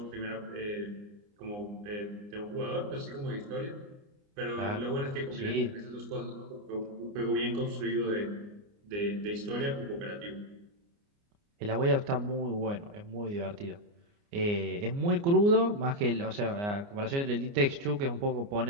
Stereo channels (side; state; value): left; late; 29 ms